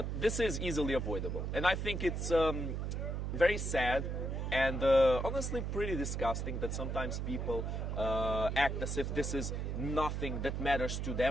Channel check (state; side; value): noise; right; hum, 2 dB below the sound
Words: this is easily avoidable. And I think it's very sad and honestly pretty disgusting that sometimes people act as if this is nothing that matters to